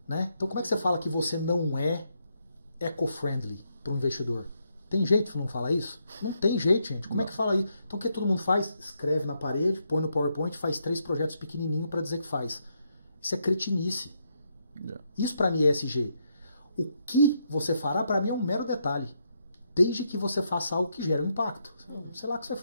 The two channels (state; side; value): inverted; both; correlation -0.78